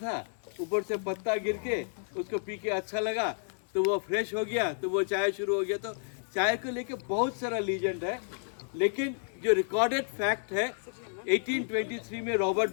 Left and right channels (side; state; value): right; silent; 57 dB below the other